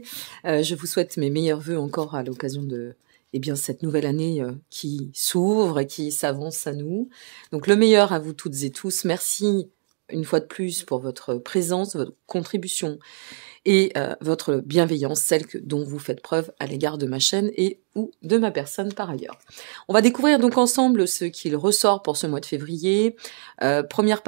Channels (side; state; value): left; silent; 61 dB below the other